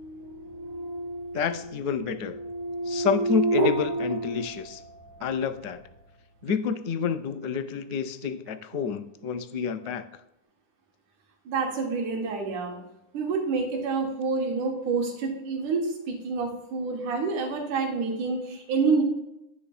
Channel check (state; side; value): late; left; 9.9 ms